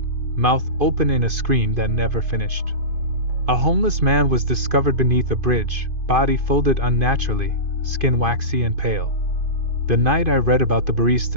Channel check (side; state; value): left; late; 2.5 ms